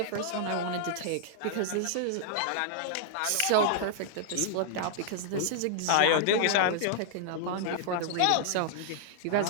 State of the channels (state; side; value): different; both; correlation -0.01